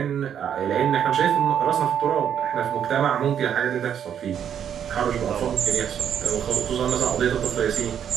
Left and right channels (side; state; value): left; quieter; 8.9 dB